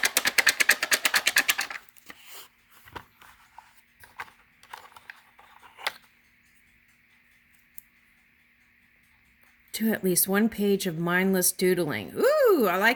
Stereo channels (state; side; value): identical; both; correlation 1.00